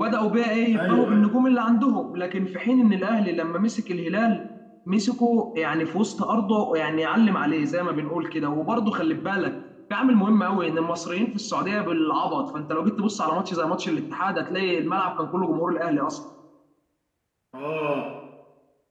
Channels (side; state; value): both; identical; correlation 1.00